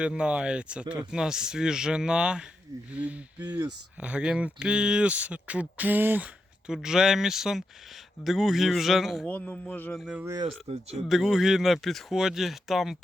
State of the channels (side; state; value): both; normal; correlation 0.85